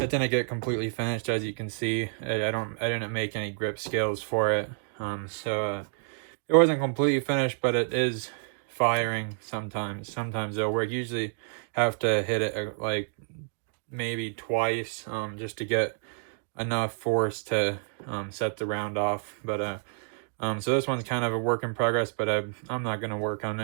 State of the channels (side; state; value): left; silent; digital silence